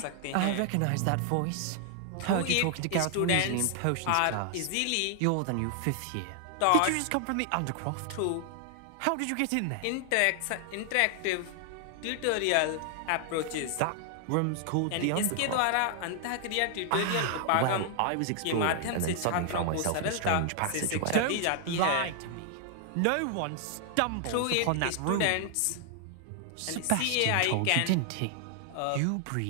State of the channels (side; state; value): both; different; correlation 0.00